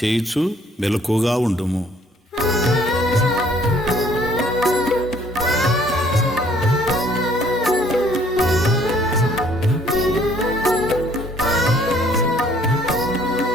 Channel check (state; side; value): normal; both; correlation 0.60